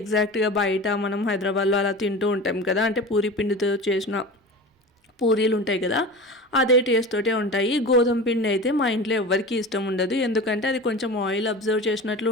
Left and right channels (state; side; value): normal; both; correlation 0.32